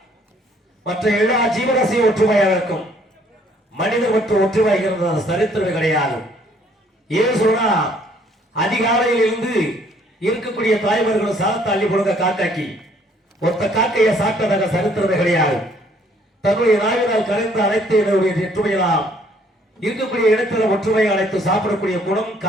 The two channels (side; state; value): both; normal; correlation 0.62